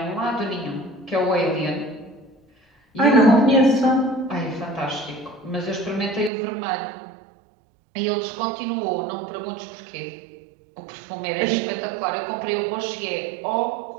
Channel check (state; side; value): drops out; left; at 6.3 s